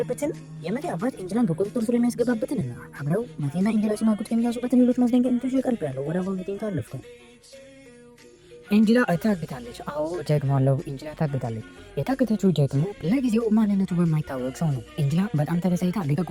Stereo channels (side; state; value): both; identical; correlation 1.00